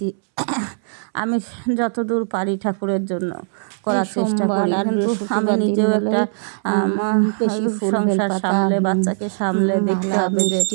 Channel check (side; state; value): left; silent; 66 dB below the other